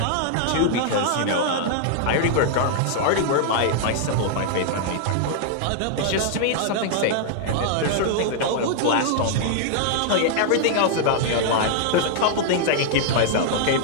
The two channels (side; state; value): both; different; correlation -0.01